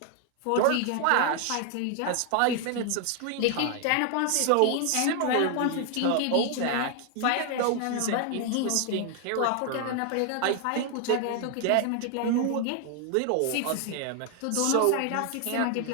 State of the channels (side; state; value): both; different; correlation 0.00